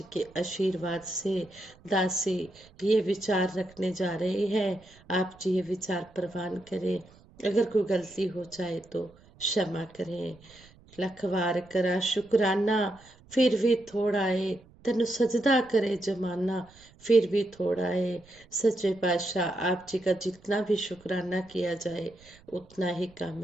के आशीर्वाद से दासी ये विचार रखने जा रहे हैं। आप जी ये विचार प्रवान करें। अगर कोई गलती हो जाए तो क्षमा करें। लख वार करा शुकराना फिर भी थोड़ा है, तेन सजदा करे जमाना फिर भी थोड़ा है। सच्चे पातशाह आप जी का जितना भी शुकराना किया जाए उतना ही कम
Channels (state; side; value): noise; right; rumble, 26 dB below the sound